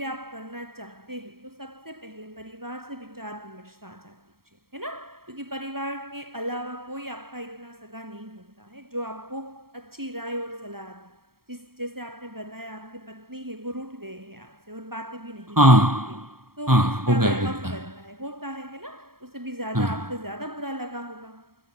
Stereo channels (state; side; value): late; left; 0.94 ms